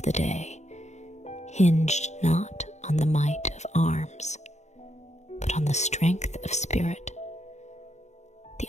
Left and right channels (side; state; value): right; late; 0.33 ms